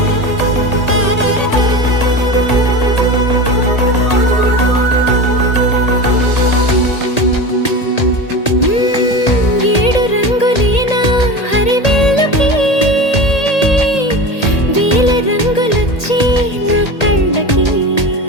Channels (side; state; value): right; late; 1.8 ms